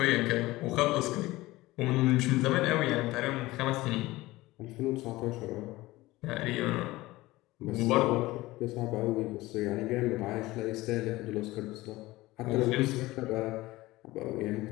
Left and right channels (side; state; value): right; quieter; 18.9 dB